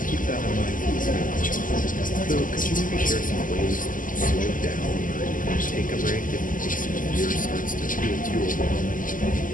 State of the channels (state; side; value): late; right; 0.39 ms